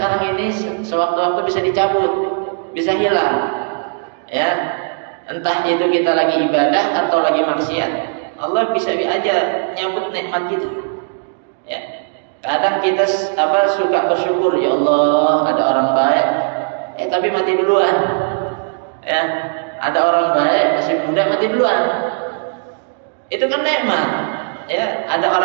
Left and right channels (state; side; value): silent; left; digital silence